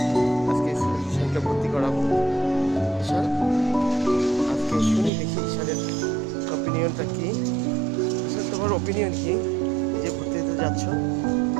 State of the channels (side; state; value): left; drops out; at 5.1 s